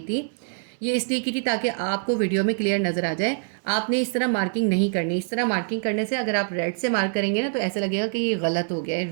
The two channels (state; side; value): silent; left; digital silence